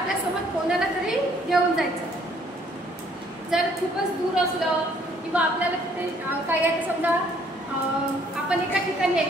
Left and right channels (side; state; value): both; normal; correlation 0.63